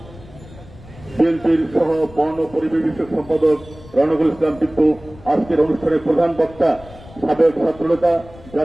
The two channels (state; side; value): noise; left; rumble, 20 dB below the sound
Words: বিএনপির সহ বন ও পরিবেশ বিষয়ক সম্পাদক রনকুল ইসলাম টিপ্পু, আজকের অনুষ্ঠানের প্রধান বক্তা সাবেক ছাত্রনেতা